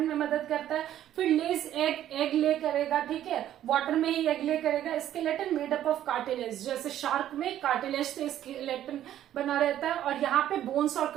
में मदद करता है। फिर लेज, एग ले करेगा, ठीक है, वाटर में ही एग ले करेगा। Skeleton made up of cartilage, जैसे शार्क में कार्टिलेज से स्केलेटन बना रहता है और यहाँ पे बोन्स और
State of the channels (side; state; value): left; quieter; 11.8 dB